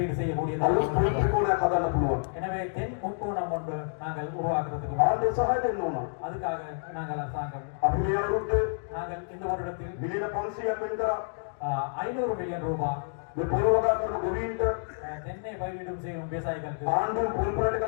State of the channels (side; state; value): right; silent; digital silence